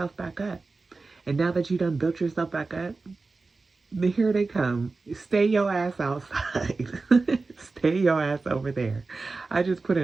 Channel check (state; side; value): quieter; left; 3.8 dB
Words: back up. And now that you done built yourself back up, here they come. Stay your ass outside. Stay your ass over there. I just put